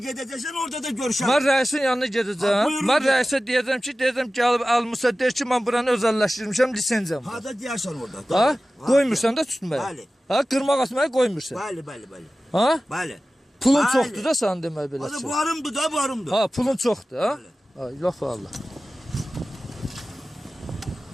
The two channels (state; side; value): normal; both; correlation 0.96